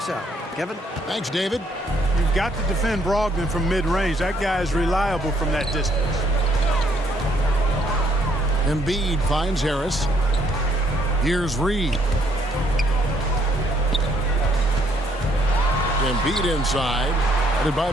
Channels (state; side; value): normal; both; correlation 0.68